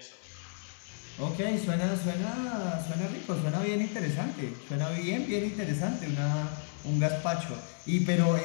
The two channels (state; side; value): silent; right; 57 dB below the other